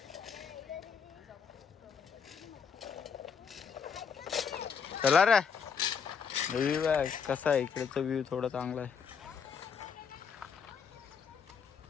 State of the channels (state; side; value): quieter; right; 6.5 dB